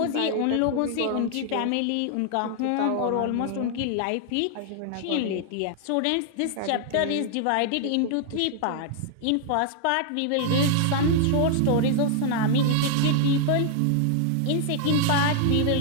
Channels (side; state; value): both; different; correlation 0.00